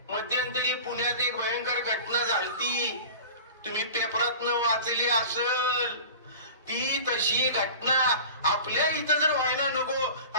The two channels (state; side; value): inverted; both; correlation -0.37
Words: मध्यंतरी पुण्यात एक भयंकर घटना झालती, तुम्ही पेपरातनं वाचली असेल. ती तशी घटना आपल्या इथं जर व्हायला